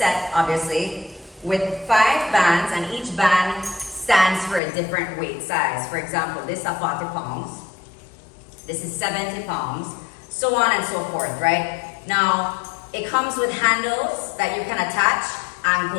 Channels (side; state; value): right; drops out; at 4.6 s